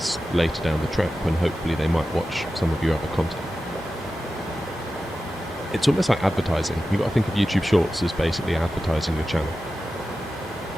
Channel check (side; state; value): both; normal; correlation 0.93